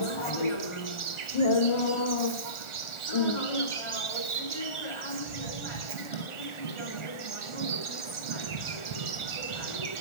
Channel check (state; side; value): late; right; 1.4 ms